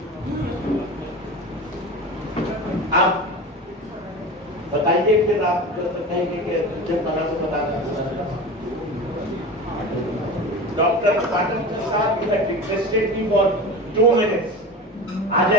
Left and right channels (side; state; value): both; normal; correlation 0.30